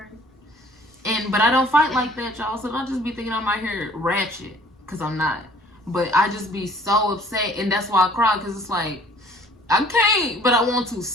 But I don't fight like that, y'all. So don't just be thinking I'm out here ratchet, because I'm not. But I just be so upset, and that's why I cry, because it's like, I can't, but I want to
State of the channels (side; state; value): both; normal; correlation 0.55